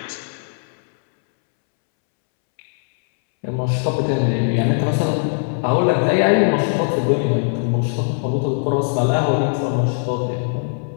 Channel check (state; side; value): silent; right; 66 dB below the other